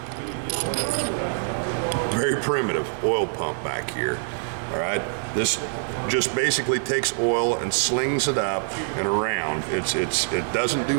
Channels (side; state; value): left; silent; 62 dB below the other